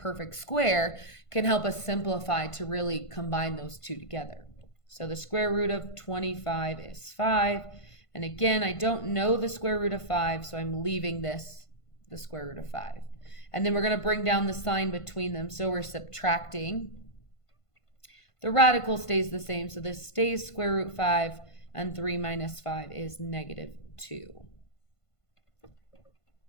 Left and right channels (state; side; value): late; right; 1.5 ms